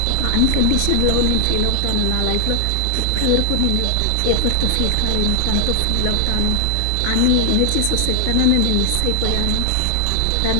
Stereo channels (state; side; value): different; both; correlation 0.00